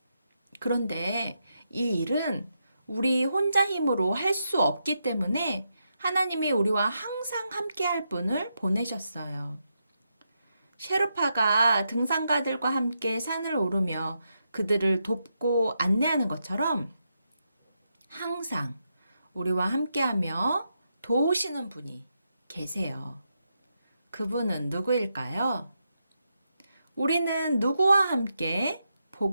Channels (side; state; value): both; inverted; correlation -0.84